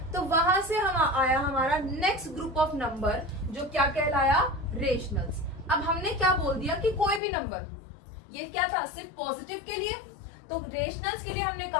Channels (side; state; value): right; drops out; at 7.2 s